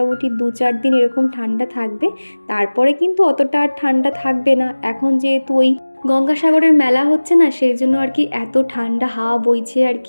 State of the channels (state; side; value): inverted; both; correlation -1.00